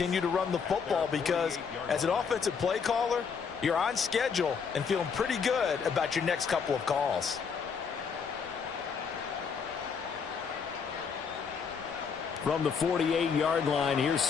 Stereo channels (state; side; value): quieter; right; 6.1 dB